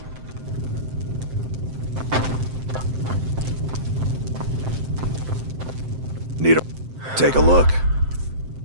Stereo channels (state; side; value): late; left; 7.7 ms